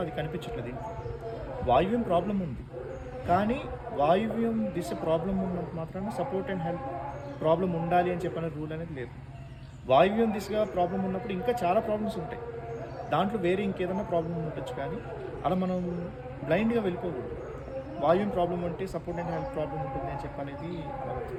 అది కనిపించట్లేదు. ఇంట్లో వాయువ్యం ప్రాబ్లం ఉంది, కానీ వాయువ్యం దిశ ప్రాబ్లం ఉన్నంత మాత్రాన సపోర్ట్ అండ్ హెల్ప్ ప్రాబ్లం ఉండాలి అని చెప్పిన రూల్ అనేది లేదు. వాయువ్యం దిశగా ప్రాబ్లం ఉన్నప్పుడు ఇంకా చాలా ప్రాబ్లమ్స్ ఉంటాయి, దాంట్లో వేరే ఇంకేదైనా ప్రాబ్లం ఉండొచ్చు. కానీ అలా మనం బ్లైండ్గా వెళ్ళిపోకూడదు. వాయువ్యం ప్రాబ్లం ఉంటే సపోర్ట్ అండ్ హెల్ప్ ప్రాబ్లం ఉంటుంది అని చెప్పనేది అవ్వదు.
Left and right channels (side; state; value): both; identical; correlation 1.00